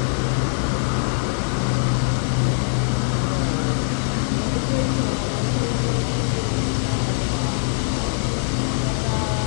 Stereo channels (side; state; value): right; silent; digital silence